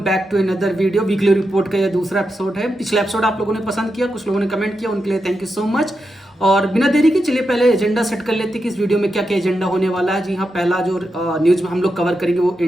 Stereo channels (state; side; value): normal; both; correlation 0.87